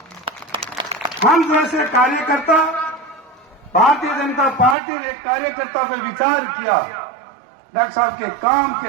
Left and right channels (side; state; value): left; drops out; at 4.8 s